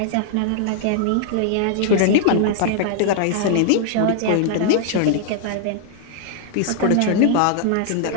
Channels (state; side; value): different; both; correlation 0.00